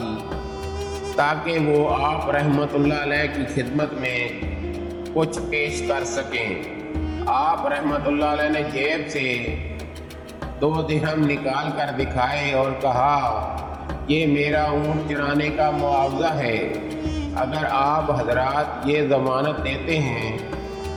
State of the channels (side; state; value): both; identical; correlation 1.00